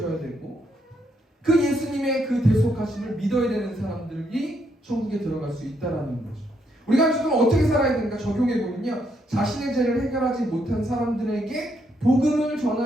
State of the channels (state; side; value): normal; both; correlation 0.75